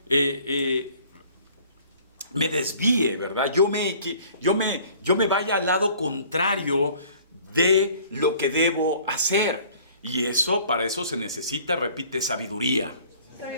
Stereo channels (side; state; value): both; inverted; correlation -0.53